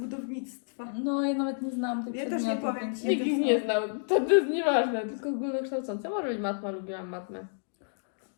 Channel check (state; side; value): silent; right; digital silence